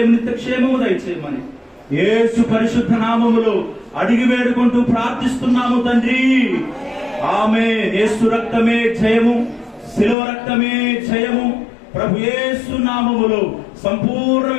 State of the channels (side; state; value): right; drops out; at 10.2 s